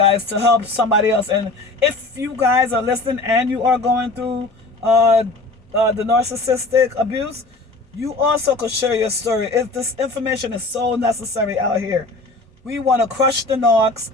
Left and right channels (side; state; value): right; quieter; 3.2 dB